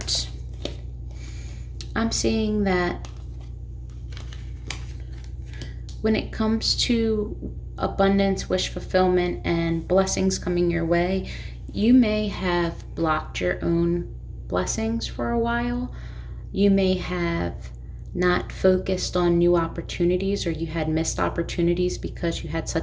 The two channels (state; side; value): identical; both; correlation 1.00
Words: I'm seeing that when it comes to abundance, wish fulfillment, and blessings coming your way, you may have blocked your own blessings for a while. You may have not focused on new opportunities, or you had missed opportunities because you had